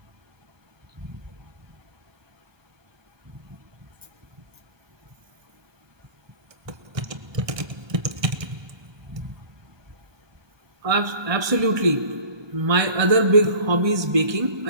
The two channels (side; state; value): left; late; 1.2 ms